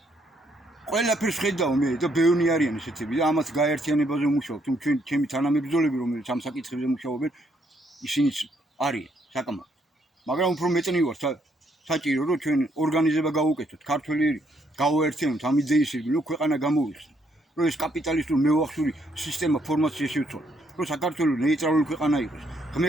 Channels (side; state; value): both; normal; correlation 0.72